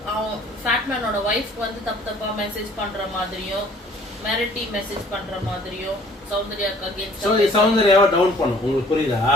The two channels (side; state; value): both; normal; correlation 0.55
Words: அவன் ஃபேட்மேனோட வைஃப் வந்து தப்பா மெசேஜ் பண்ற மாதிரியும் மிரட்டி மெசேஜ் பண்ற மாதிரியும் சௌந்தர்யாக்கு அகைன்ஸ்ட் சௌந்தர்யாவை டவுன் பண்ணும். உங்களுக்கு புரியுதா?